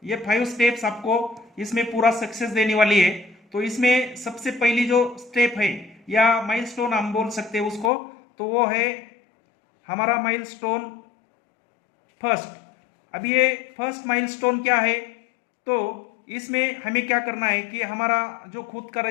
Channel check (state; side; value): drops out; right; at 7.9 s